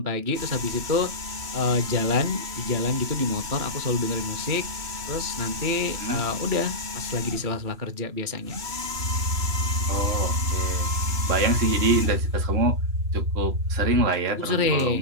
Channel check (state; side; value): late; left; 3.0 ms